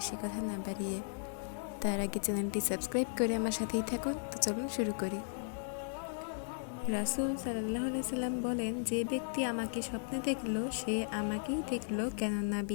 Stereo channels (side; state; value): right; silent; digital silence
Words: কথা না বাড়িয়ে। তার আগে চ্যানেলটি সাবস্ক্রাইব করে আমার সাথেই থাকুন। তো চলুন শুরু করি। রাসূল সাল্লাল্লাহু আলাইহি সাল্লাম বলেন, যে ব্যক্তি আমাকে স্বপ্নে দেখল সে আমাকেই দেখল, কেননা